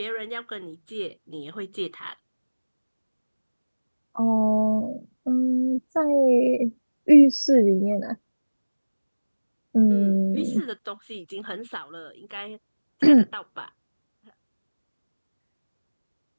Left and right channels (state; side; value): inverted; both; correlation -1.00